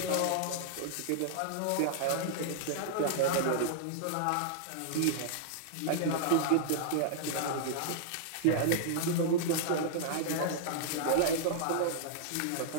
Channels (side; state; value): both; different; correlation -0.02